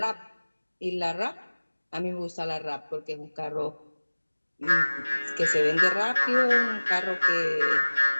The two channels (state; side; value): inverted; both; correlation -1.00